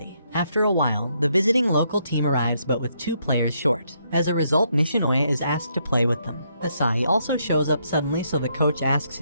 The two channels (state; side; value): inverted; both; correlation -0.75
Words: After a while, the visiting local team arrives but with 2 players short. As a result, Nishinoya is asked to play with them. Asahi also shows up suddenly, so the coach asks